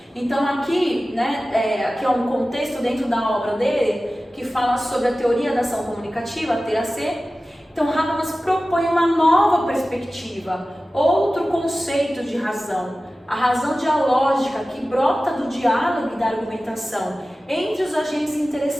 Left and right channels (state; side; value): normal; both; correlation 0.96